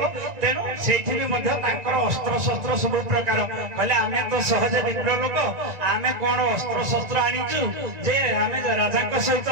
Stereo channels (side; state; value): left; late; 1.9 ms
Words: ତେଣୁ ସେଇଠି ବି ମଧ୍ୟ ତାଙ୍କର ଅସ୍ତ୍ରଶସ୍ତ୍ର ସବୁ ପ୍ରକାର କହିଲେ ଆମେ ତ ସହଜ ବିପ୍ର ଲୋକ, ଆମେ କଣ ଅସ୍ତ୍ରଶସ୍ତ୍ର ଆଣିଛୁ ଯେ ଆମେ ରାଜାଙ୍କ ସହିତ